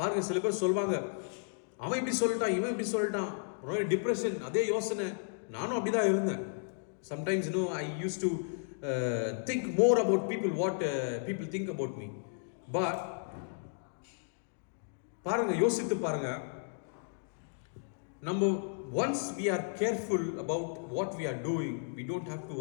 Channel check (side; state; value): right; silent; digital silence